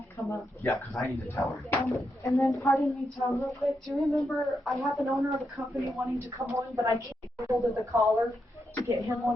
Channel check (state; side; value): normal; both; correlation 0.83